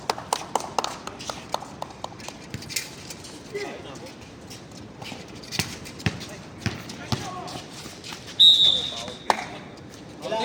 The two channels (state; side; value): identical; both; correlation 1.00